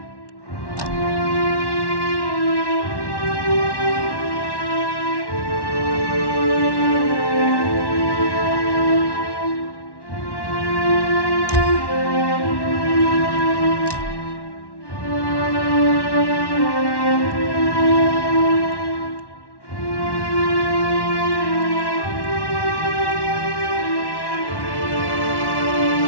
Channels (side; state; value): right; late; 1.1 ms